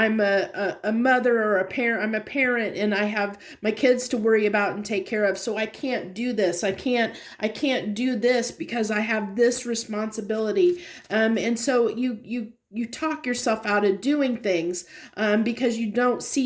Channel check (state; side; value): identical; both; correlation 1.00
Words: a mother or a parent. I'm a parent, and I have my kids to worry about and take care of. So I can't do this. I can't do this because I have this responsibility. And so you talk yourself out of doing things because you don't